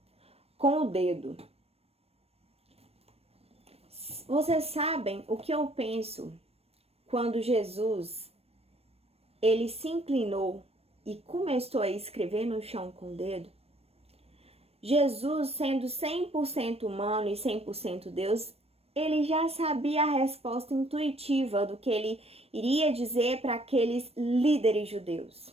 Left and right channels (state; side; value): late; left; 0.29 ms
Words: com o dedo. Vocês sabem o que eu penso quando Jesus, ele se inclinou e começou a escrever no chão com o dedo? Jesus, sendo 100% humano e 100% Deus, ele já sabia a resposta intuitiva do que ele iria dizer para aqueles líderes